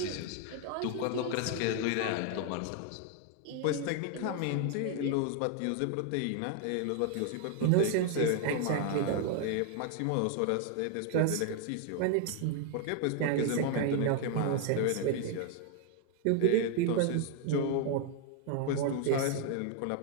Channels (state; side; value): different; both; correlation 0.00